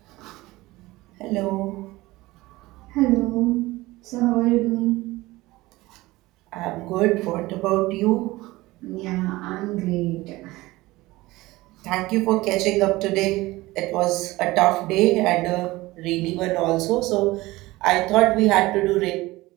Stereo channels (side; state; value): left; quieter; 19.5 dB